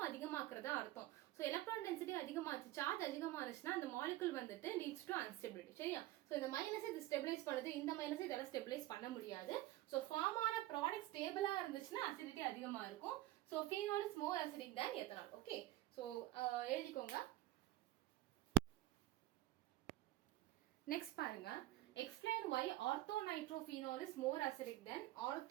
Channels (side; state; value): left; quieter; 16.3 dB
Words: அதிகமாக்குறதா அர்த்தம். சோ எலக்ட்ரான் டென்சிட்டி அதிகமாச்சு, சார்ஜ் அதிகமானுச்சுன்னா அந்த மாலிகுல் வந்துட்டு லீட்ஸ் டு அன்ஸ்டெபிலிட்டி. சரியா? சோ இந்த மைனஸ் இது ஸ்டெபிலைஸ் பண்ணுது, இந்த மைனஸ் இதெல்லாம் ஸ்டெபிலைஸ் பண்ண முடியாது. சோ ஃபார்ம் ஆன ப்ராடக்ட் ஸ்டேபிளா இருந்துச்சுன்னா அசிடிட்டி அதிகமா இருக்கும். So phenol is more acidic than ethanol. Okay, so எழுதிக்கோங்க. Next பாருங்க, explain why orthonitrophenol is more acidic than